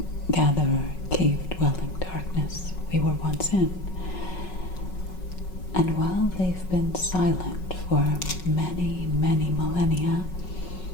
cave-dwelling darkness we were once in. And while they've been silent for many, many millennia,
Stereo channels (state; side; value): late; right; 5.4 ms